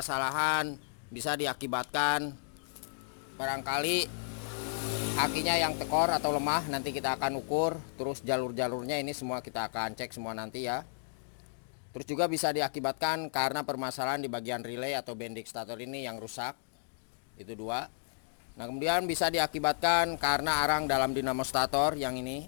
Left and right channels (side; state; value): right; silent; digital silence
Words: bisa diakibatkan barangkali akinya yang tekor atau lemah. Nanti kita akan ukur, terus jalur-jalurnya ini semua kita akan cek semua nanti ya. Terus juga bisa diakibatkan karena permasalahan di bagian relay atau bendik starter ini yang rusak. Itu dua. Nah, kemudian bisa diakibatkan karena arang dalam dinamo starter yang ini